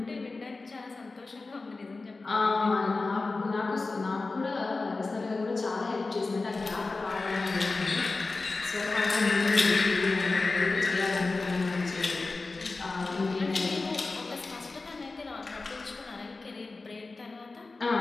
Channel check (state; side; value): quieter; right; 3.6 dB